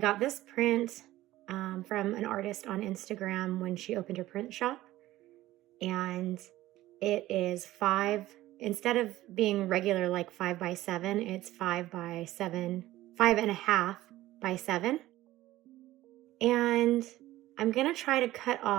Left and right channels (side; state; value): left; quieter; 15.9 dB